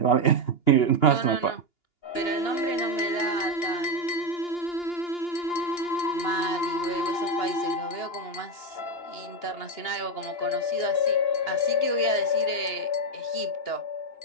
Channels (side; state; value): right; late; 2.9 ms